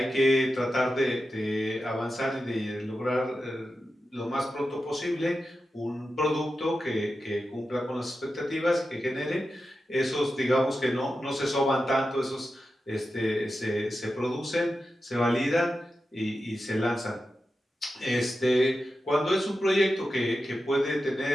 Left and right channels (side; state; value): both; normal; correlation 0.91